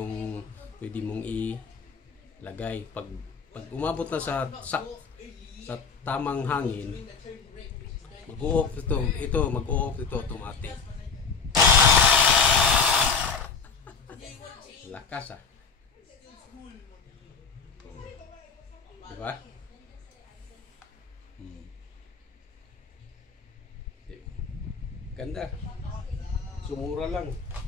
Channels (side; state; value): right; quieter; 5.4 dB